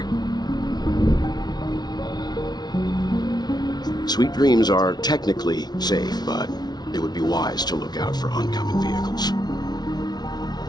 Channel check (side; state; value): right; late; 0.19 ms